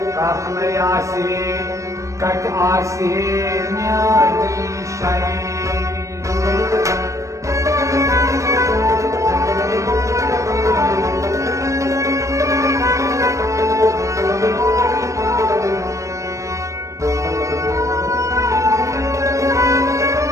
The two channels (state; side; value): late; left; 0.15 ms